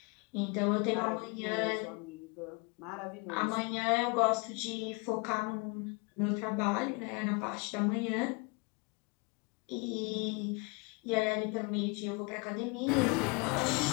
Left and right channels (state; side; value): quieter; right; 29.4 dB